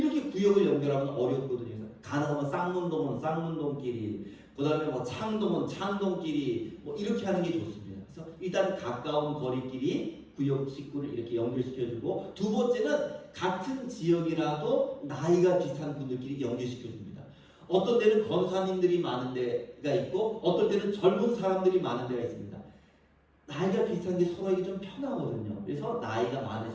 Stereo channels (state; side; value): identical; both; correlation 1.00